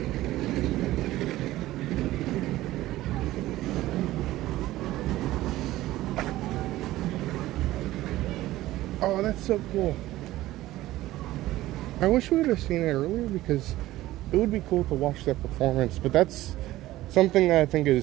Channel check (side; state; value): left; quieter; 16.1 dB